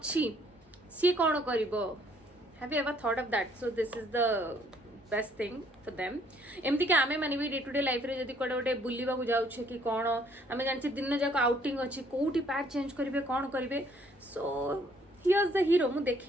सी कोन करिवो have you ever thought of that so this is the best thing for them एमती कि आमे माने भी डे टू डे लाइफ रे जदि कोडे गोटे बुलिबा को जाउछे कि कोन आमे जानछि दिन जाक आउटिंग अछि कोउटी पैड चेंज करिवे कोन करिवे सो हियर्स द हीरो मु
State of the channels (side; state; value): both; normal; correlation 0.63